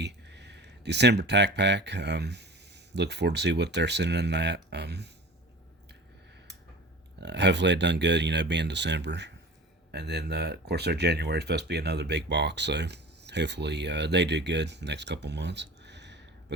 December tack pack. Look forward to see what they're sending in that. Hopefully it done good, being December. And then, of course, their January is supposed to be another big box, so hopefully they do good the next couple months. But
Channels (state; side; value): normal; both; correlation 0.39